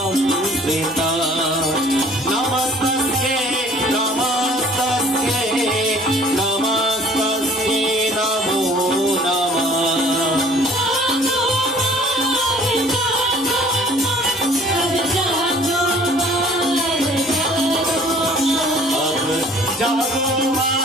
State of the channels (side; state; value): both; normal; correlation 0.53